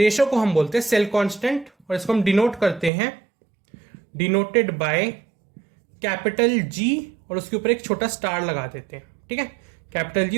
को हम बोलते हैं सेल कांस्टेंट। और इसको हम डिनोट करते हैं डिनोटेड बाय कैपिटल G और उसके ऊपर एक छोटा स्टार लगा देते हैं। ठीक है, कैपिटल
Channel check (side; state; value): left; drops out; at 2.9 s